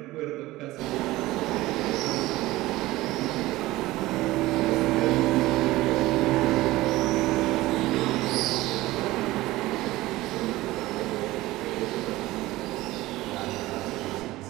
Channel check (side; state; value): left; quieter; 18.1 dB